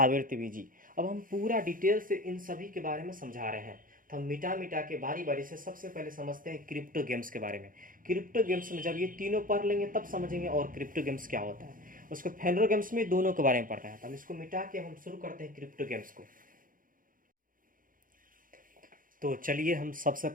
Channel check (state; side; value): late; left; 0.40 ms